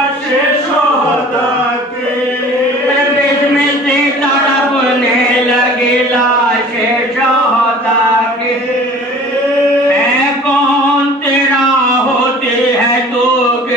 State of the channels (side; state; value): both; normal; correlation 0.46